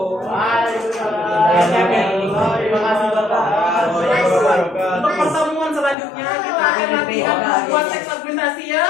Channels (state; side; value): drops out; right; at 6.0 s